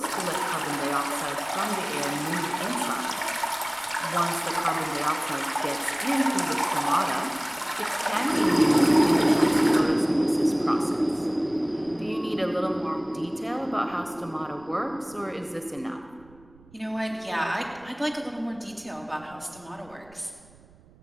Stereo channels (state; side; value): noise; right; rumble, 26 dB below the sound